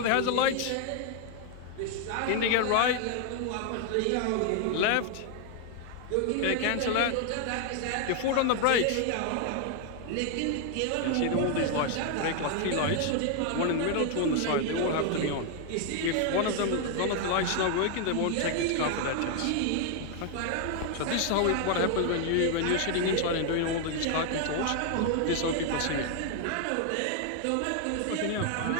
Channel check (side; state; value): both; different; correlation 0.00